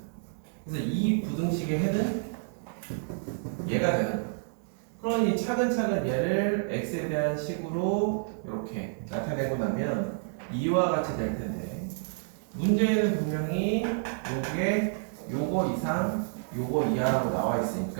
그래서 이 부등식의 해는 얘가 되는 거예요. 그러니 차근차근 얘를 x에 대한 식으로 이렇게 나타내고 나면 이와 같이 될 텐데, 문제에는 분명히 요게 요거 이상 요거 이하라고 나와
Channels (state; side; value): silent; left; digital silence